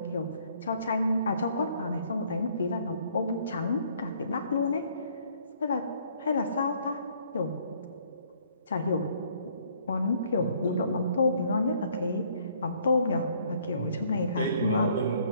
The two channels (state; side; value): inverted; both; correlation -0.62